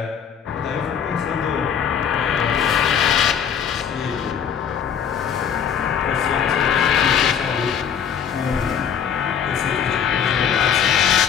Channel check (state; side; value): quieter; right; 7.8 dB